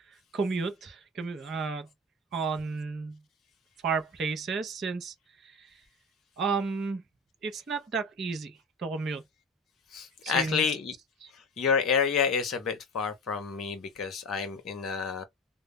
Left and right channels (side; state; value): both; normal; correlation 0.31